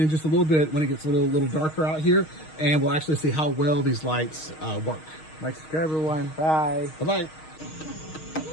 just a little bit when it gets a little darker out here, and we'll actually see how well these lights work. Like, subscribe, everyone. Bye. Bye-bye.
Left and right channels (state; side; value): late; right; 6.4 ms